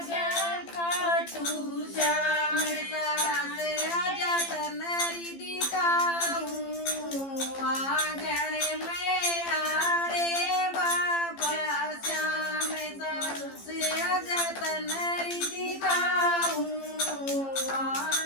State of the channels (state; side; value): late; right; 15 ms